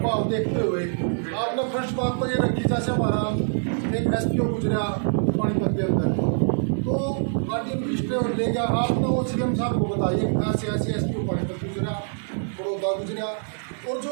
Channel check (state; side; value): silent; left; digital silence